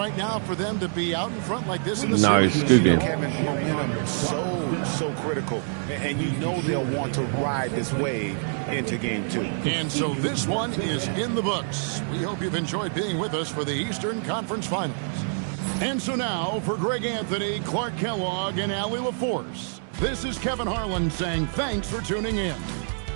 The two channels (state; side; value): silent; left; digital silence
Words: now for them to be out in front like this in the series. Nice, good game. Kevin, momentum is so critical, and you know they'll want to ride this wave into game 2. And so this one is in the books. We hope you've enjoyed being with us for the Eastern Conference Finals. And so now for Greg Anthony, Clark Kellogg, and Allie LaForce, this is Kevin Harlan saying thanks for tuning in.